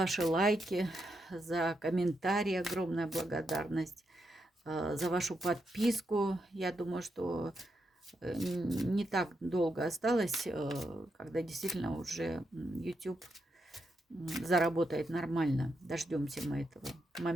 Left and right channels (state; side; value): normal; both; correlation 0.83